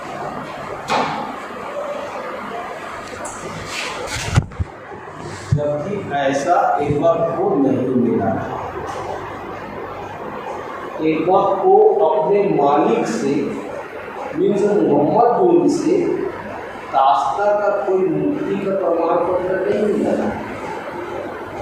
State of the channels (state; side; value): identical; both; correlation 1.00